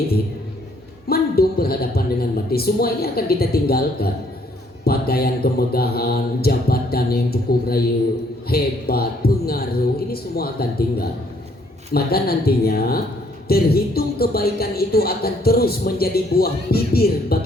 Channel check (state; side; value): normal; both; correlation 0.66